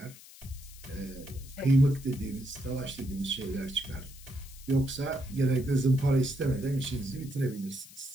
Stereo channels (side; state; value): left; noise; hiss, 19 dB below the sound